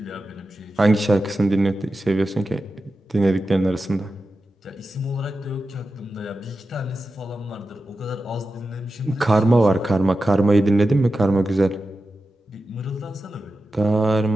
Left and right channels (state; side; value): normal; both; correlation 0.92